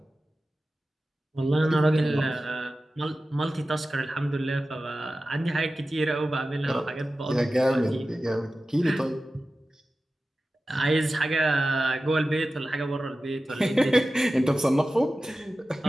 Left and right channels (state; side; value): normal; both; correlation 0.94